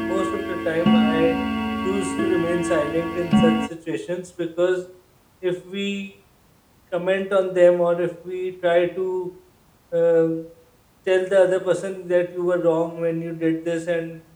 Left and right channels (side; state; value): both; identical; correlation 1.00